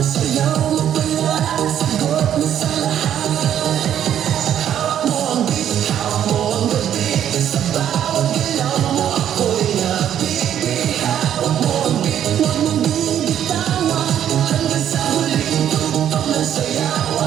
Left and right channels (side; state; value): left; quieter; 10.2 dB